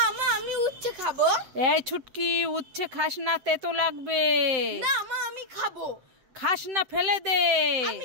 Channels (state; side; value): late; left; 7.8 ms